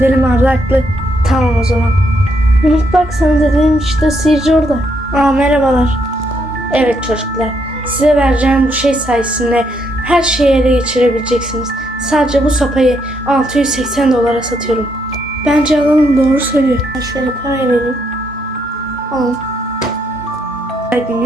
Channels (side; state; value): both; normal; correlation 0.75